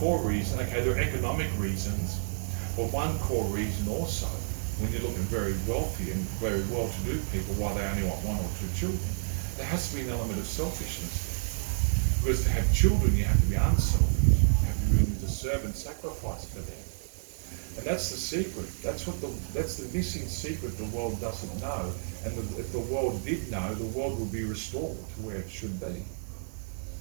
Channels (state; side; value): silent; left; digital silence